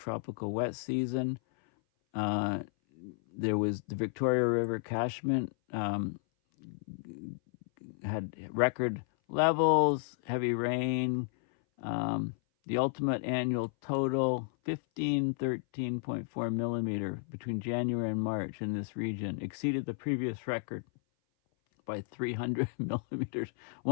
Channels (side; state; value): right; silent; 56 dB below the other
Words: wet season. There was the Victoria River catchment had record levels, heavy rain. The ultimate annual total, 13.4 millimeter between January and March in this region, exceeded the previous record by 300 millimeters,